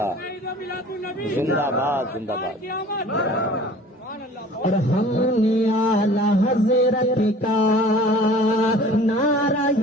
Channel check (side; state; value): both; normal; correlation 0.47